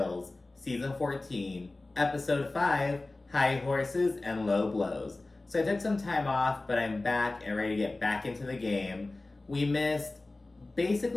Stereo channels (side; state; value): right; quieter; 3.0 dB